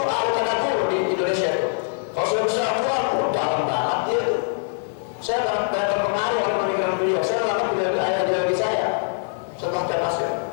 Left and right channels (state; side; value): silent; right; digital silence